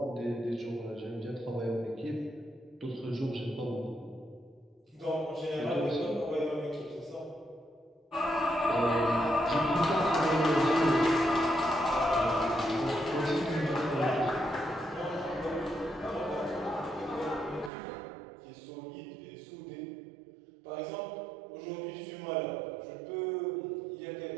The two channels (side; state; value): left; drops out; at 17.7 s